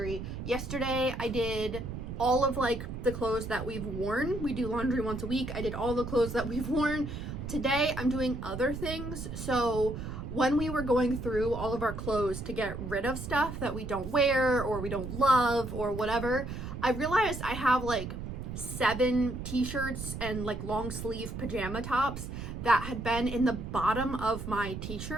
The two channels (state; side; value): noise; right; rumble, 7 dB below the sound